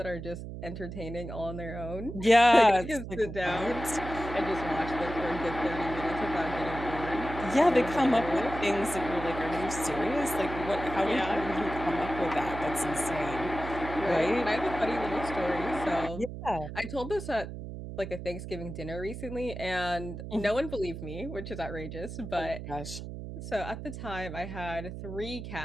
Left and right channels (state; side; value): noise; right; hum, 9 dB below the sound